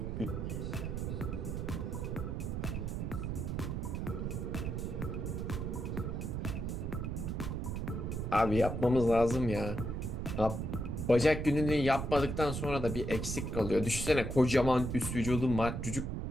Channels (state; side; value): noise; right; rumble, 3 dB below the sound